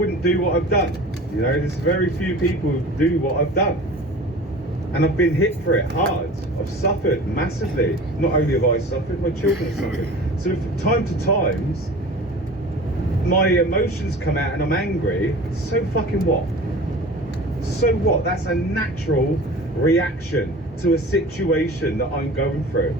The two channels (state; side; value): normal; both; correlation 0.39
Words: do what I've done. You know, there's very few people who do what I've done. And I've been hit for it hard. I've suffered massively. Not only have I suffered, my children have suffered. So from time to times, my emotions come out and I'm angry. So fucking what? So what? That's a natural reaction to a situation that I'm going through.